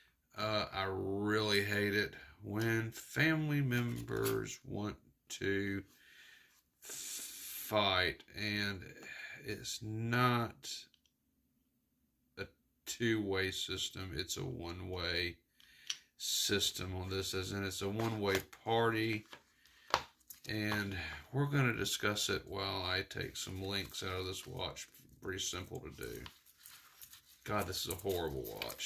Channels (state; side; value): identical; both; correlation 1.00